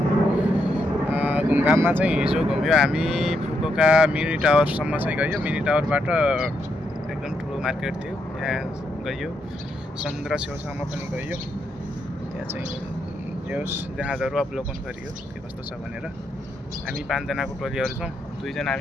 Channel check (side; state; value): both; normal; correlation 0.79